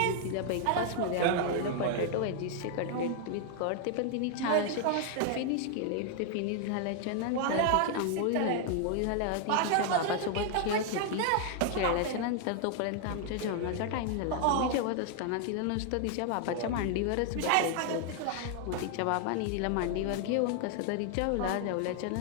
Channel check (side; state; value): both; different; correlation 0.00